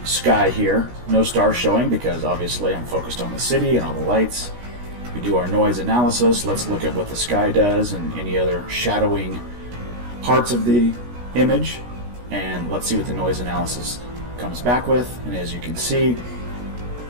sky here. No stars showing because obviously I'm focused on the city and all the lights. We do our noise analysis. Let's look at what the sky does and any other shadowing parts of the image, and let's see what the noise analysis comes back with. And as you can see,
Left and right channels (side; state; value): left; late; 16 ms